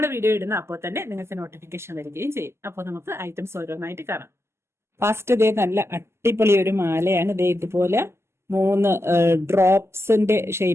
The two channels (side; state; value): left; late; 0.12 ms